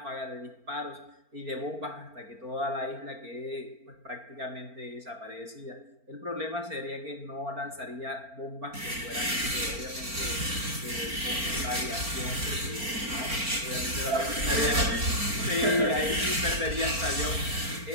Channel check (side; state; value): left; late; 4.4 ms